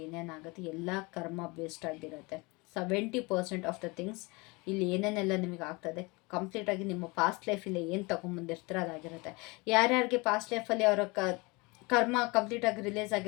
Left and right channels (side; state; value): right; quieter; 26.2 dB